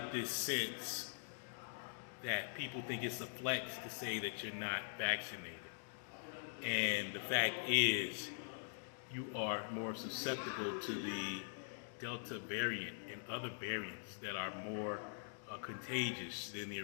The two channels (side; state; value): right; silent; digital silence